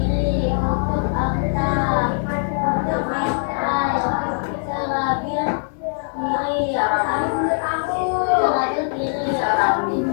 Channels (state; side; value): silent; right; 62 dB below the other